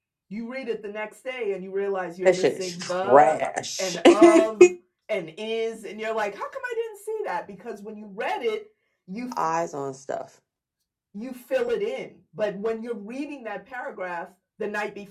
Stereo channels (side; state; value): both; identical; correlation 1.00